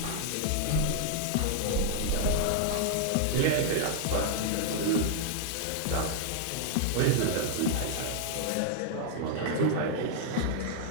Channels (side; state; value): both; different; correlation -0.01